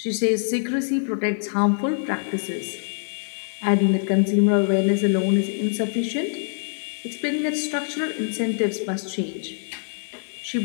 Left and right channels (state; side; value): silent; right; digital silence